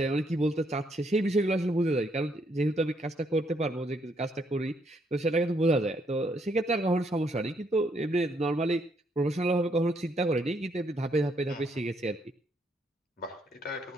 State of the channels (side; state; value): both; normal; correlation 0.73